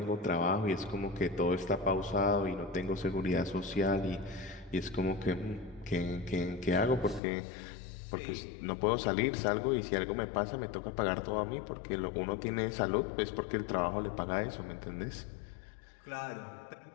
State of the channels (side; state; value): right; drops out; at 7.2 s